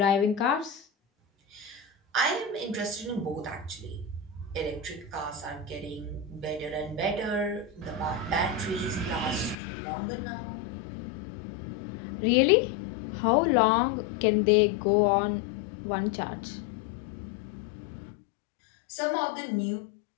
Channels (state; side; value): drops out; right; at 9.6 s